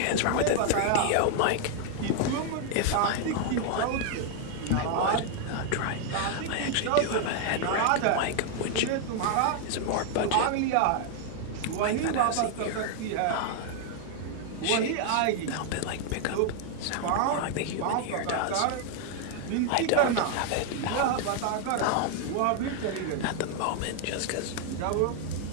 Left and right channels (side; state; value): both; different; correlation 0.00